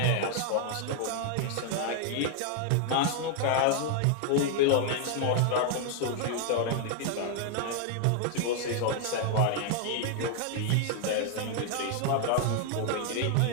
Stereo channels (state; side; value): different; both; correlation 0.00